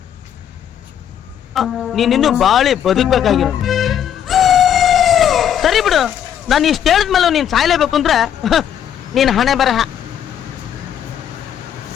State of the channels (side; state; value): right; quieter; 9.5 dB